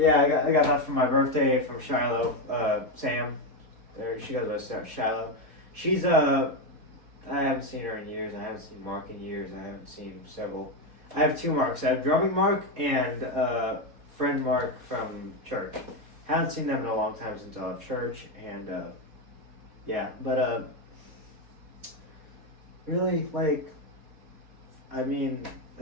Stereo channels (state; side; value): late; left; 4.2 ms